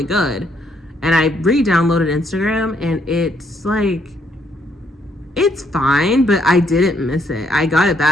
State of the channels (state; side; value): normal; both; correlation 0.72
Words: good. And I re-downloaded Instagram, and it's like, it's fine, but I didn't miss it. I got it